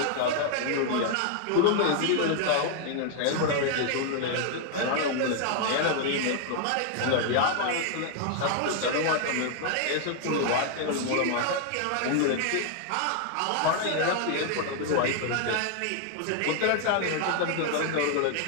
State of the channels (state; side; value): different; both; correlation 0.00